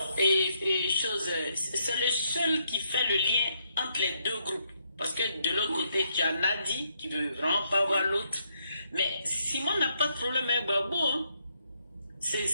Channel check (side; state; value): both; inverted; correlation -0.76